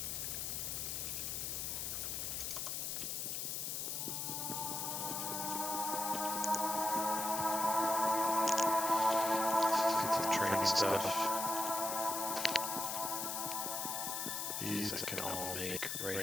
Let's get some training stuff. These I can all make right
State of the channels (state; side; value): noise; left; hiss, 2 dB below the sound